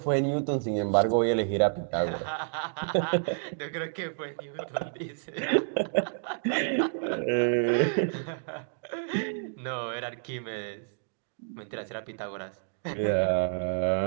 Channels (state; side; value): silent; left; digital silence